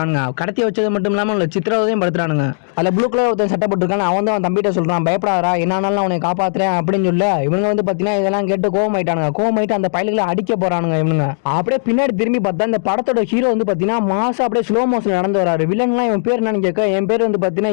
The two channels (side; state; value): right; silent; digital silence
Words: கடத்தி வச்சது மட்டும் இல்லாமல் சித்திரவதையும் படுத்துறானுங்க. அதில் ப்ளூ கலர் ஒருத்தர் சட்டப்பட்டிருக்காங்க. அவன் தான் தம்பிட்ட சொல்றான், பயப்படாதா, என்னாலும் அவனை காப்பாத்துறேன் அப்படின்னு சொல்ல இவங்க வந்து பார்த்தீங்கன்னா இதெல்லாம் கேட்டு கோவமாயிட்டு அந்த பயல்களை அடிக்க போறானுங்க இவனுங்க. அப்படியே பின்னாடி திரும்பி பார்த்தா இந்த படத்தோட ஹீரோ வந்து பாத்தீங்கன்னா மாசா அப்படியே ஸ்லோ மோஷன் நடந்து வராரு. வில்லன்லாம் இவன் பேர் என்னன்னு கேட்க என் பேர் வந்து பாத்தீங்கன்னா